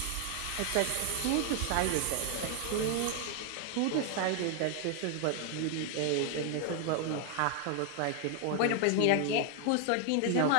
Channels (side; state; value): both; different; correlation 0.00